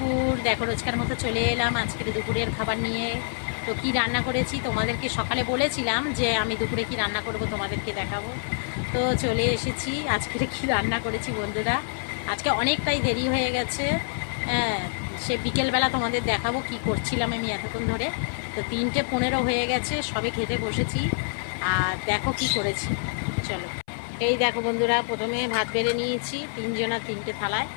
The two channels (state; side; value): silent; right; 61 dB below the other